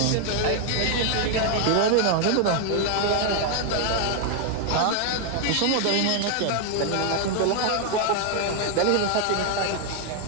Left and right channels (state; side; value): different; both; correlation 0.00